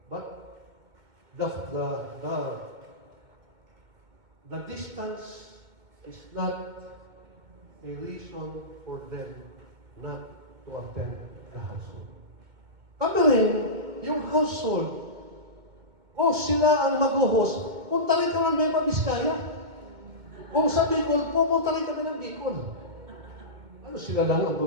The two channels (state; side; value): late; left; 2.2 ms